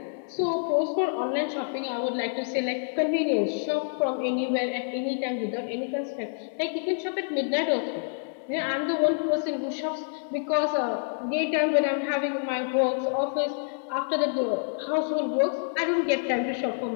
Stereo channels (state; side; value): silent; right; 59 dB below the other